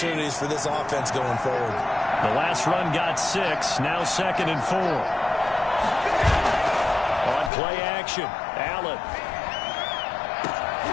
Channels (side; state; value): right; drops out; at 7.5 s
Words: for this offense going forward. The last run got 6. Now 2nd and 4. On play action, Allen.